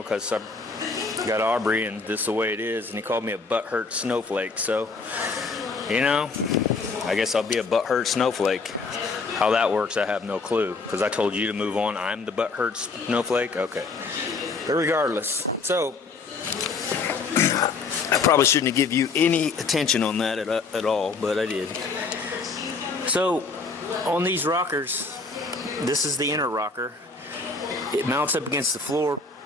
because I've got Aubrey and this is the way it is. And he called me a butthurt snowflake. So, you know, I guess I'll be a butthurt snowflake. How that works, I have no clue, because I told you to move on. I'm the butthurt snowflake? Okay. But regardless, so I probably shouldn't have given you any attention on that at all, but I did. So on these rockers, this is the inner rocker. It mounts up against the floor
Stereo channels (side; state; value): right; quieter; 4.2 dB